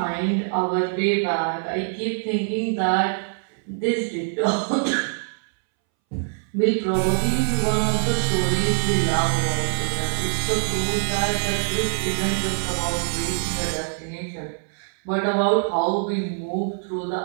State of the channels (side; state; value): left; silent; 63 dB below the other